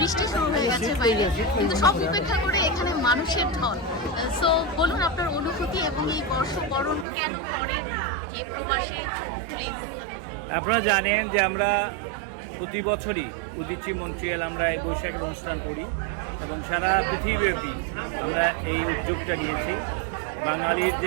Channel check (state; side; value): drops out; left; at 7.1 s